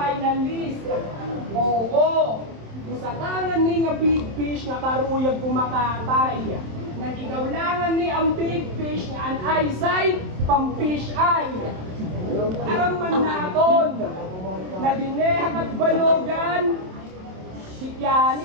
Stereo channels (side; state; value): left; late; 27 ms